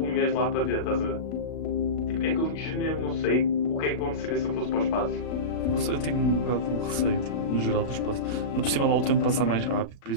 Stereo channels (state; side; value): late; right; 36 ms